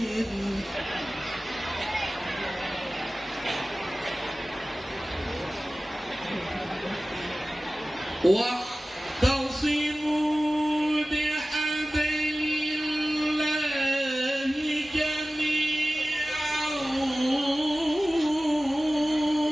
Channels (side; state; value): both; normal; correlation 0.97